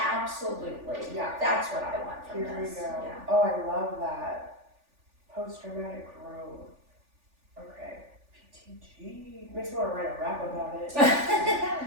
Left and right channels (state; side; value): late; left; 3.4 ms